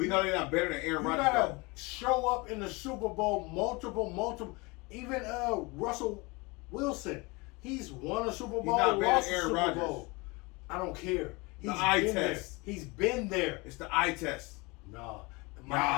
know they're not better than Aaron You Rodgers. gotta though. show up in the Super Bowl multiple. Even Russell Wilson, he's won a Super Bowl, not better lost than a Aaron Super Rodgers. Bowl. I don't care. He's eye been test. there. He's been there. It's the eye test. Nah.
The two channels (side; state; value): right; quieter; 26.1 dB